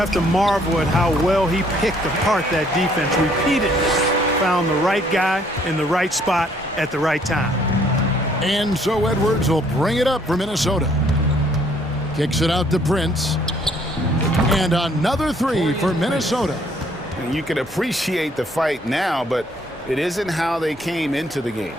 to marvel at how well he picked apart that defense repeatedly. Found the right guy in the right spot at the right time. And so Edwards will bring it up for Minnesota. Kicks it out to Prince. And another three for Minnesota. And you can appreciate the fight now, but it isn't how they came into the game.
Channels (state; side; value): normal; both; correlation 0.64